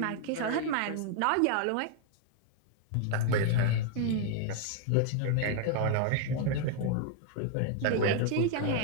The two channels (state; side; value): different; both; correlation 0.00